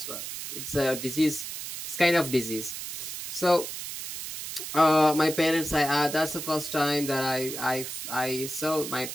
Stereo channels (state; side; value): noise; right; hiss, 7 dB below the sound